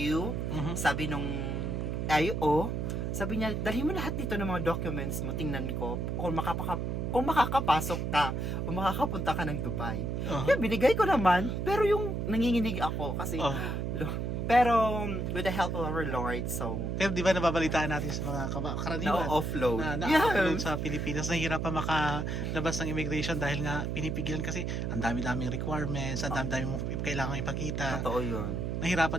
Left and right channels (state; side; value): noise; right; hum, 1 dB below the sound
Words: sabi nung IO, sabi niya, dalhin mo lahat dito ng mga documents mo, tingnan ko kung makakapasok ka o makakapunta ka ng Dubai. Kaya binigay ko naman, pero yung nanginginig ako kasi pero with the help of our Lord, so Pero di ba nababalitaan natin sa mga karaniwan na-offload. na na-upload sa Pilipinas, nahihirapan makalabas ng immigration dahil nga pinipigilan kasi ang dami-daming requirements, ang dami-daming kailangan ipakita. Totoo yun.